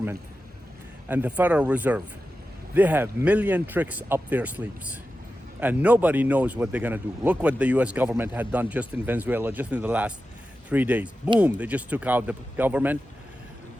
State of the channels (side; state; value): both; normal; correlation 0.92